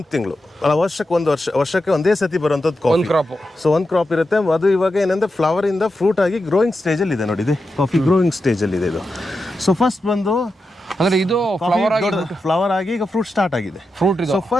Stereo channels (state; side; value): normal; both; correlation 0.89